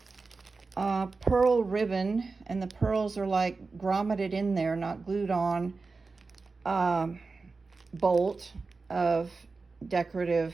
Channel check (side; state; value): left; quieter; 4.1 dB